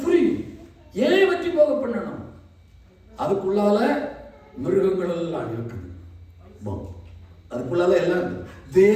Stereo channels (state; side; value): identical; both; correlation 1.00